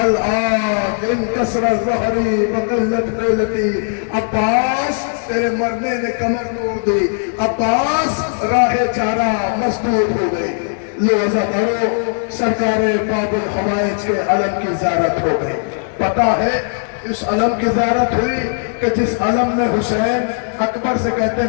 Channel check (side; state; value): right; silent; 68 dB below the other